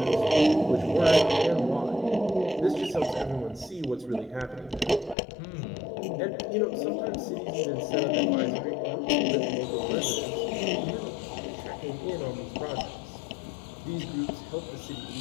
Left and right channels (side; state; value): right; drops out; at 5.2 s